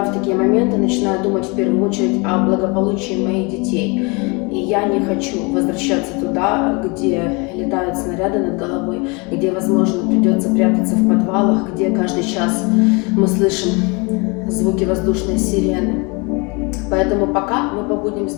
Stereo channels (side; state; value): right; quieter; 29.3 dB